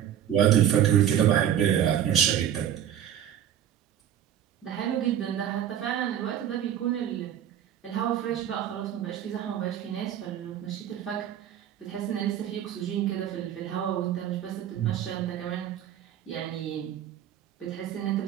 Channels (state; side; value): quieter; left; 10.2 dB